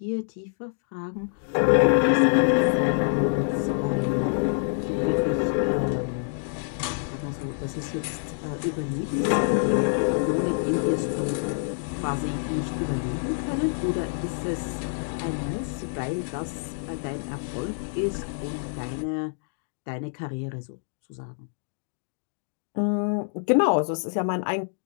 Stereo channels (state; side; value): silent; right; digital silence